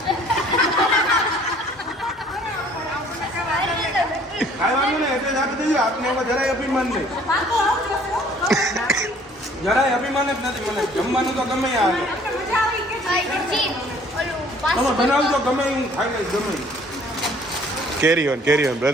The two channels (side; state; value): both; normal; correlation 0.56